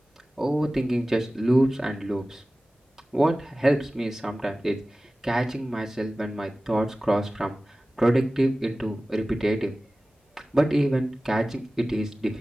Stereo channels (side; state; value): both; normal; correlation 0.97